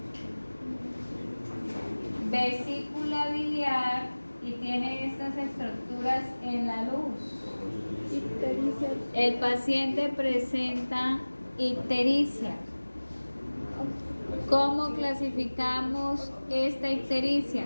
vesícula biliar y tiene estas estructuras en la luz. Ictericia. El paciente presenta ictericia. ¿Cómo clasificamos esta ictericia?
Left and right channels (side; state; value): both; inverted; correlation -1.00